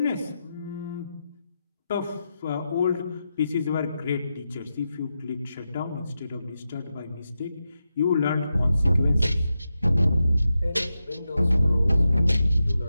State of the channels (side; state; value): both; inverted; correlation -0.89